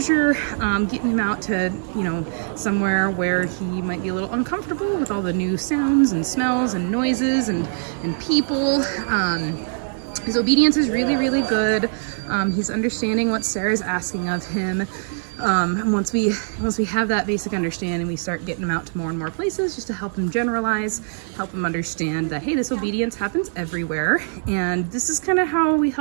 getting him out to, somewhere where he might be a little uncomfortable with all the new sounds and smells and noises and people. His obedience is really, really good. He's understanding what Sarah's asking of him. And once we have that basic understanding, we start getting him out to more and more places just to help him generalize, help him understand that, hey, this obedience happens everywhere. And this is kind of how we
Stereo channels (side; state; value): left; silent; digital silence